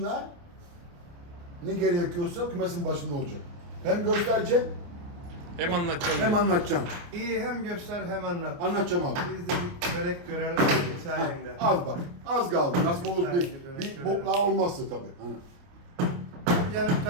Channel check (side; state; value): left; late; 29 ms